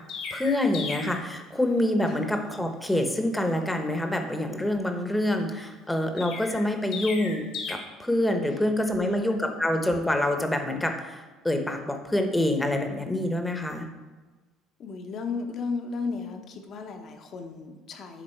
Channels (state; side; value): normal; both; correlation 0.80